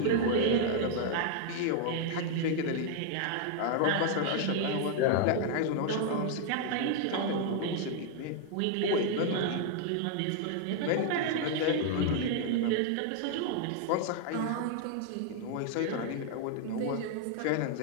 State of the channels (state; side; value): different; both; correlation 0.00